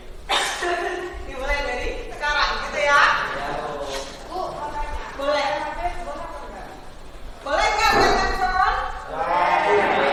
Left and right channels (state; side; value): identical; both; correlation 1.00